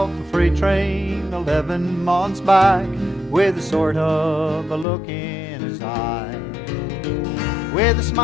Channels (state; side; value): drops out; right; at 4.9 s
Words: a freight train 11 months back, with a sort of a look in his eye, with a